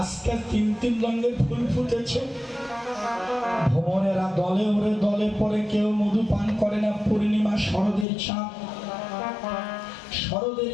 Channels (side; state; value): right; drops out; at 8.1 s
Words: তিন তিন রঙের ফুল ফুটেছে। ভ্রমণেরা দলে ওরে দলে পরে, কেউ মধু পান করে না। পূর্ণিমা শরদের চাঁদ, শরদের